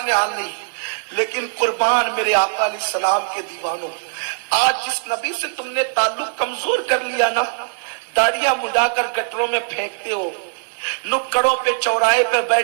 حال نہیں۔ لیکن قربان میرے آقا علیہ السلام کے دیوانوں، آج جس نبی سے تم نے تعلق کمزور کر لیا نا، داڑیاں مڈا کر گٹروں میں پھینکتے ہو، نکڑوں پہ چوراہے پہ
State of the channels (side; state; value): left; silent; digital silence